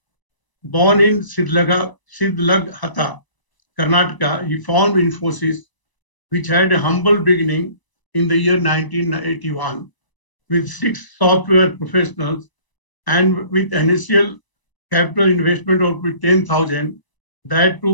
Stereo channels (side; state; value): right; late; 1.0 ms